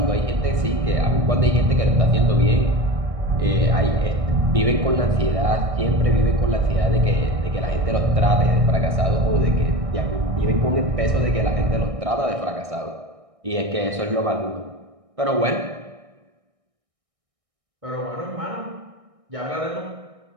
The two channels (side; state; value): left; late; 1.6 ms